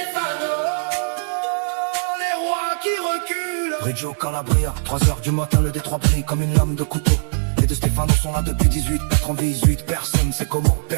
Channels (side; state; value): left; silent; digital silence